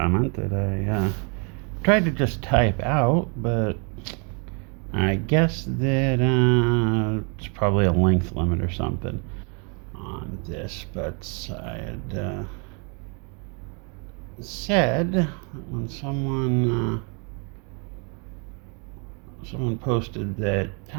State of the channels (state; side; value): quieter; left; 35.7 dB